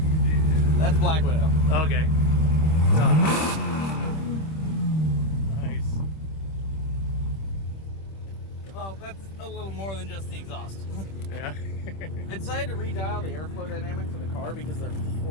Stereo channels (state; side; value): late; right; 26 ms